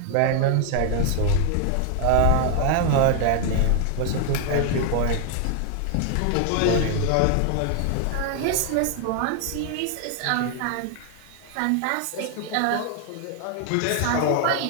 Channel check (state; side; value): different; both; correlation 0.00